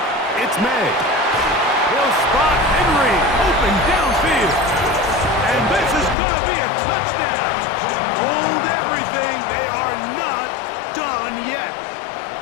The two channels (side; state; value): right; drops out; at 6.2 s